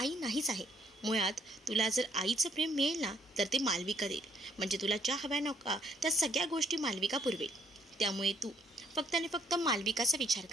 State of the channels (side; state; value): both; normal; correlation 0.65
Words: नाहीच आहे. मुळात तुला जर आईचं प्रेम मिळेल ना तर ते मालविका देईल. म्हणजे तुला ज्या हव्या नका त्या सगळ्या गोष्टी मालविका पुरवेल. त्यामुळे तू फक्त आणि फक्त मालविकाचा विचार